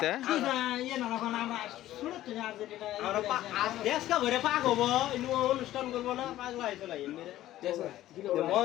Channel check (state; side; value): quieter; right; 14.2 dB